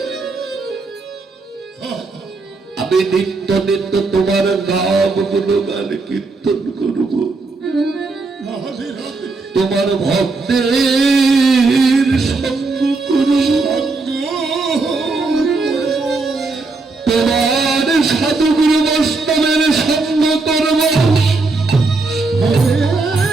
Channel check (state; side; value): quieter; left; 3.7 dB